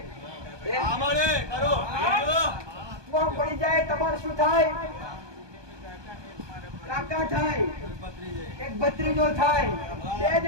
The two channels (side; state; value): left; late; 1.2 ms